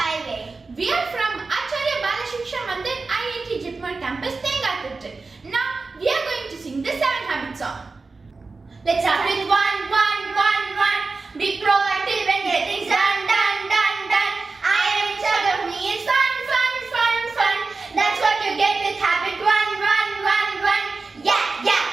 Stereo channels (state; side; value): quieter; left; 4.0 dB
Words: We are from Achariya Bala Siksha Mandir IIT Jitmar campus, Tengatirthi. Now we are going to sing the 7 habits song. Let's start with